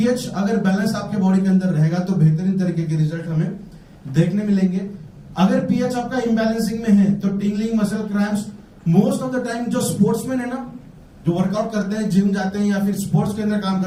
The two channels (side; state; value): both; identical; correlation 1.00